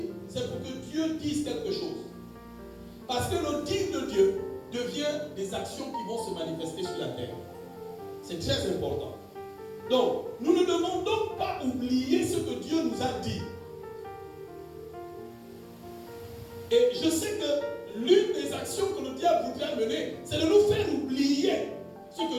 c'est pour que Dieu dise quelque chose. Parce que le dire de Dieu devient des actions qui vont se manifester sur la terre. C'est très important. Donc, nous ne devons donc pas oublier ce que Dieu nous a dit. Et je sais que l'une des actions que le diable voudrait mener, c'est de nous faire oublier ce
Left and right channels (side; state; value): both; identical; correlation 1.00